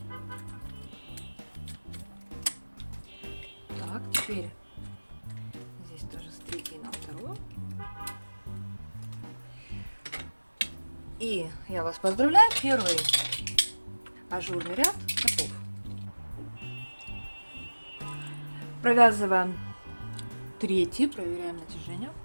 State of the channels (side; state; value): both; inverted; correlation -1.00